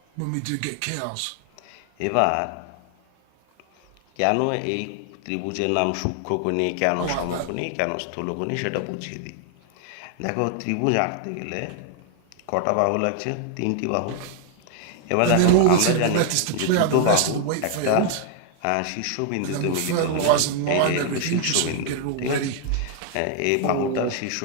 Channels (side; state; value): both; different; correlation 0.00